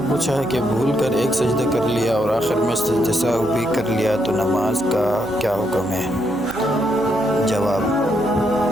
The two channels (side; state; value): right; noise; hum, 17 dB below the sound